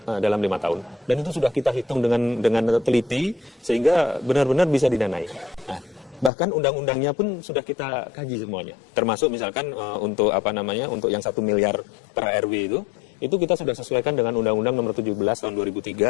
dalam 5 tahun. Dan itu sudah kita hitung dengan teliti sehingga benar-benar bisa didanai. Nah, bahkan undang-undangnya pun sudah kita kaji semuanya. Termasuk misalkan untuk untuk yang 1 miliar per RW itu kita sudah sesuaikan dengan Undang-Undang Nomor 17 tahun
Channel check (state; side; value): drops out; right; at 6.3 s